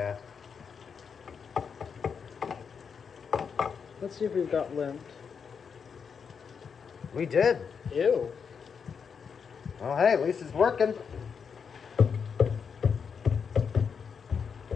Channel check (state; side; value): quieter; right; 6.4 dB